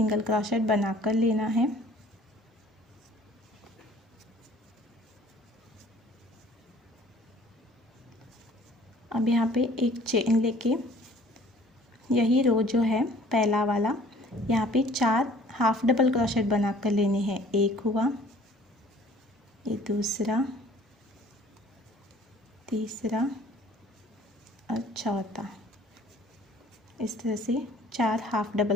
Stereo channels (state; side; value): normal; both; correlation 0.53